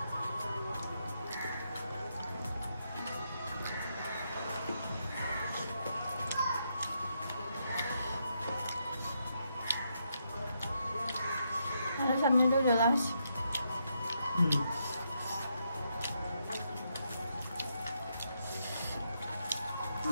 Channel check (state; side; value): inverted; both; correlation -0.80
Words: সামনেটো জ্বলা হৈছে